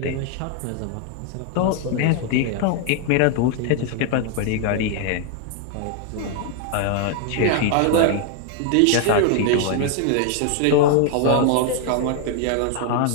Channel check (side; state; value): both; different; correlation 0.00